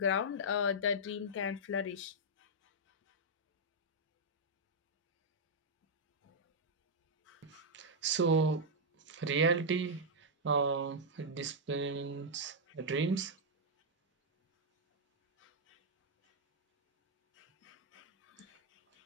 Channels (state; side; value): normal; both; correlation -0.05